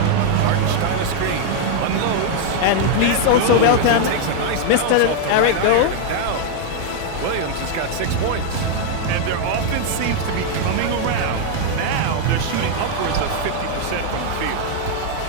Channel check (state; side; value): different; both; correlation 0.00